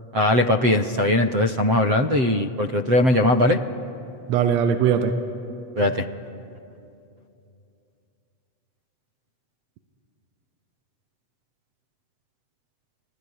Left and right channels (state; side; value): late; left; 7.8 ms